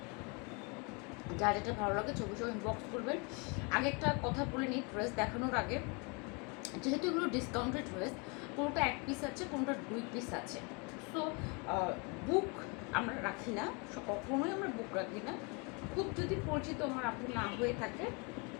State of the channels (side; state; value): right; quieter; 31.9 dB